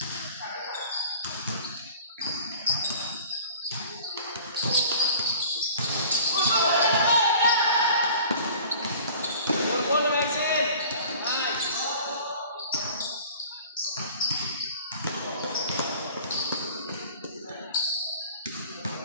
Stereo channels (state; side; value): inverted; both; correlation -0.46